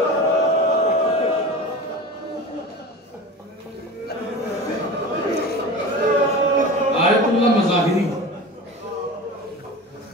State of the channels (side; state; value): both; normal; correlation 0.32